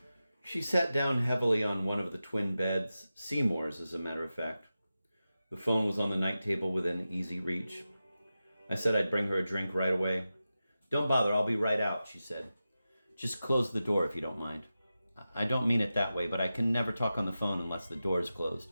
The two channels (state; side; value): inverted; both; correlation -0.93